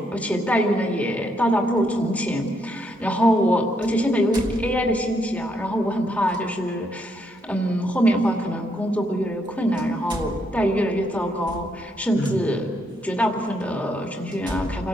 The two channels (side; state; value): both; normal; correlation 0.75